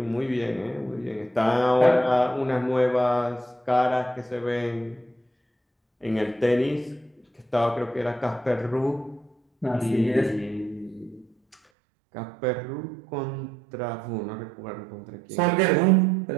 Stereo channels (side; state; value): left; drops out; at 11.6 s